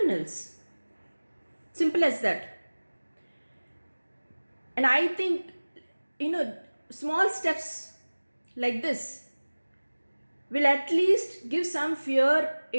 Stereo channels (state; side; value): inverted; both; correlation -1.00